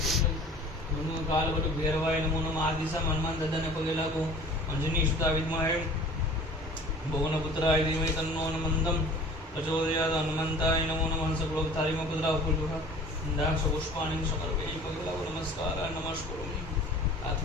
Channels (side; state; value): both; normal; correlation 0.46